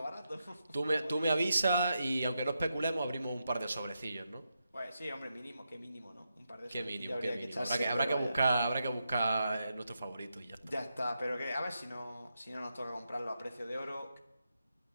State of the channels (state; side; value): inverted; both; correlation -0.85